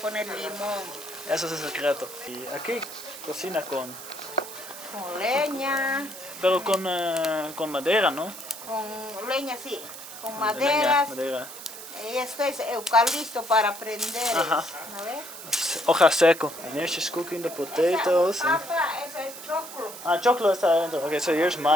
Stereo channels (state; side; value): noise; right; hiss, 12 dB below the sound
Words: limón. Eso es el secreto. Y aquí cocina con Leña. Pero con madera, ¿no? Con leña, sí. Con Leña, maderas. madera. Y esto es eucalipto para prender. Ajá. ¿No ves? Hoja seco. And here's just cooking the potatoes. And... Papa, eso es choclo. Ah, choclo está adentro. Okay, so here's